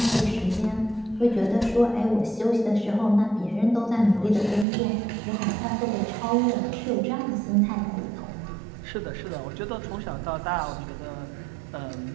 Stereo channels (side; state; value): left; drops out; at 4.7 s